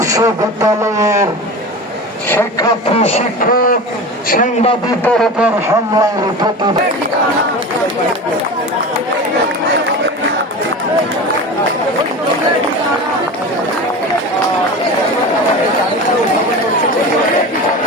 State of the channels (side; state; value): both; normal; correlation 0.30